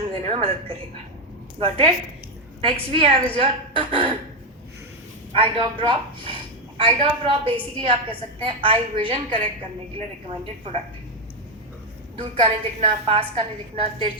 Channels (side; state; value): both; normal; correlation 0.05